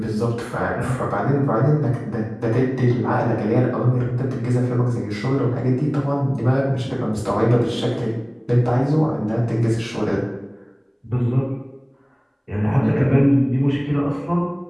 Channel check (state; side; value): identical; both; correlation 1.00